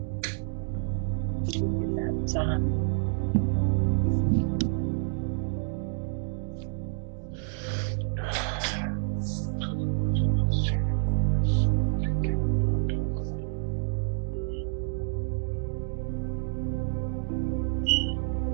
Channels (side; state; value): left; silent; digital silence